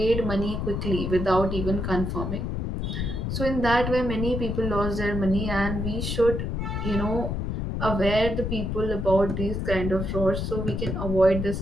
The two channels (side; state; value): left; noise; rumble, 2 dB below the sound